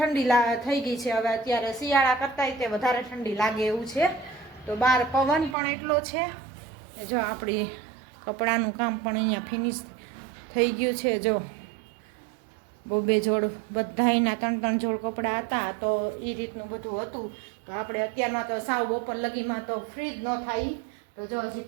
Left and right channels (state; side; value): drops out; left; at 5.6 s